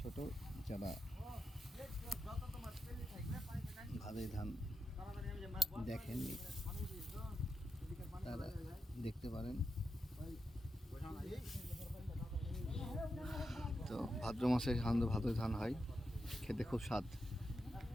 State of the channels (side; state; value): both; normal; correlation 0.87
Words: যারা ভাদই ধান দেখেননি তারা দেখতে পারেন। তো ভাদ্র মাসে সাধারণত ভাদই ধান হয়, খেতে খুব স্বাদ,